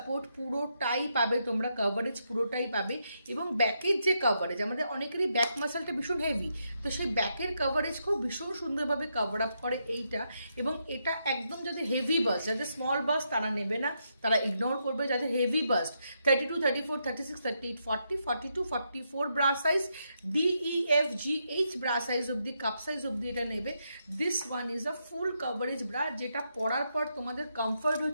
পুরোটাই পাবে তোমরা, কভারেজ পুরোটাই পাবে। এবং ব্যাকের যে কভারেজ, আমাদের অনেকেরই ব্যাক মাসলটা ভীষণ হেভি, তো সেই ব্যাকের কভারেজ খুব ভীষণ সুন্দরভাবে কভার আপ করে এইটা। এবং এটা একদম যাদের হেভি বাস্ট, যাদের স্মল বাস্ট তারা নেবে না, তারা ইগনোর করবে। যাদের heavy bust 32, 34, 36, 38, 40, 42, 44 bra size, DEFGH bra size অব্দি, কাপ সাইজ অব্দি এটা নেবে। This one is a full coverage bra, যেটা পরার পর তোমাদের কমফর্ট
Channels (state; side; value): inverted; both; correlation -0.81